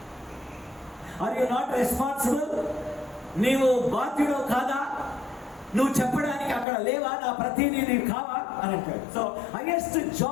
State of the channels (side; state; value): right; drops out; at 6.7 s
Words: Are you not responsible? నీవు బాధ్యుడు కాదా? నువ్వు చెప్పడానికి అక్కడ లేవా? నా ప్రతినిధి కావా అని అంటాడు. సో హైయెస్ట్